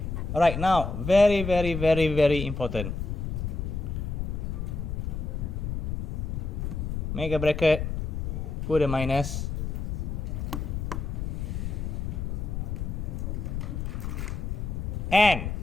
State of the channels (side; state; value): left; noise; rumble, 3 dB below the sound